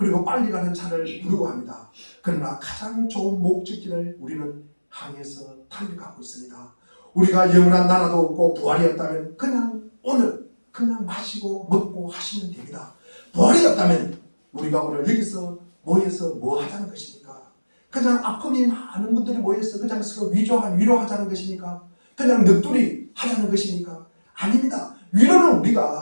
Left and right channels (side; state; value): both; inverted; correlation -1.00